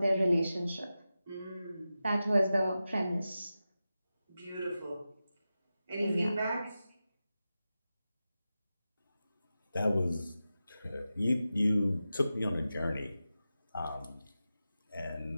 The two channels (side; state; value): both; inverted; correlation -0.93